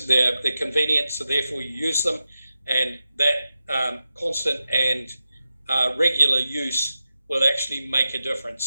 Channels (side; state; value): both; inverted; correlation -0.92